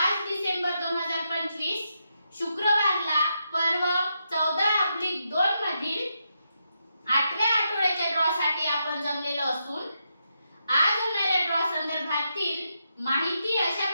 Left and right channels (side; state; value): both; inverted; correlation -0.83